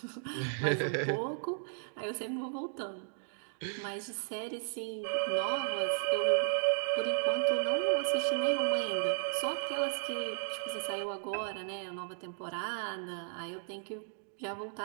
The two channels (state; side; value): silent; left; digital silence